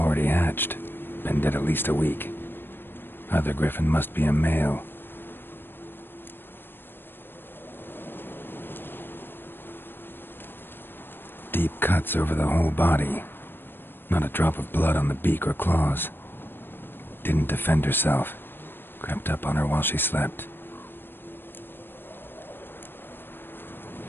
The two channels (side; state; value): right; late; 0.099 ms